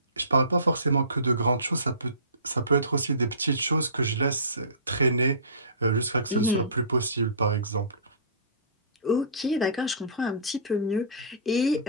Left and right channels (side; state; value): both; inverted; correlation -0.37